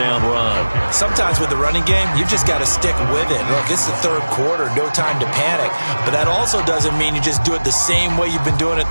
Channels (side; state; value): both; inverted; correlation -1.00